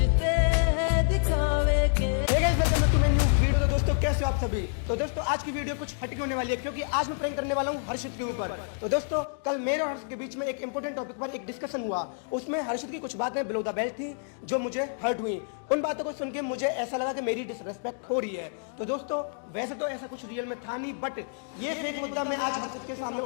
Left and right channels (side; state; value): right; silent; digital silence